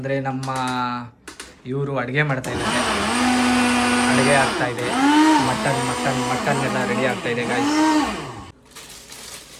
ನಮ್ಮ ಇವರು ಅಡುಗೆ ಮಾಡ್ತಾ ಇದ್ದಾರೆ. ಅಡುಗೆ ಆಗ್ತಾಯಿದೆ. ಮಟನ್ ಎಲ್ಲ ರೆಡಿ ಆಗ್ತಾಯಿದೆ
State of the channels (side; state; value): both; identical; correlation 1.00